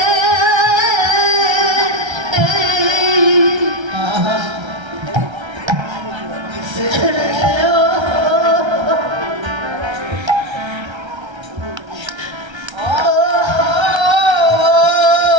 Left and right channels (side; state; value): left; late; 1.3 ms